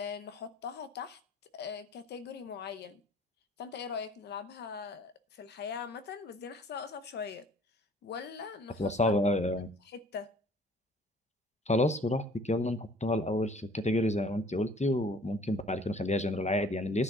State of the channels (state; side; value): normal; both; correlation 0.54